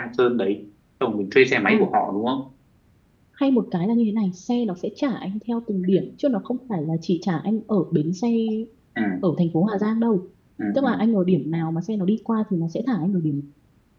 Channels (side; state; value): both; identical; correlation 1.00